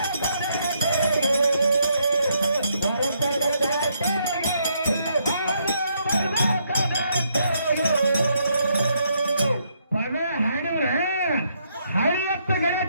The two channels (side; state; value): both; inverted; correlation -0.75